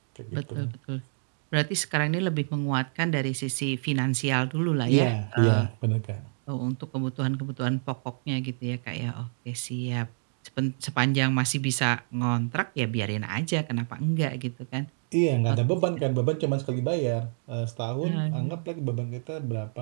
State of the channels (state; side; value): silent; left; digital silence